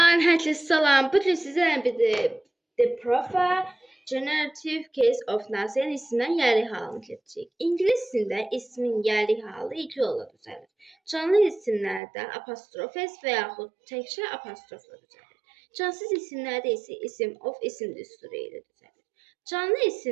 herkese selam. Bugün sizlerle birlikte The Proper Generative Case of Nazi'nin isminden yerli halını keçəcəyik. İngilis dilində ismin yerli halı iki yolla düzəlir. Canlı isimlərdə apostrof s və yaxud təkcə apostrofla düzəlir. Cansız isimlərdə isə isim of isim düsturu ilə düzəlir. Canlı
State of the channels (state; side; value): drops out; left; at 12.0 s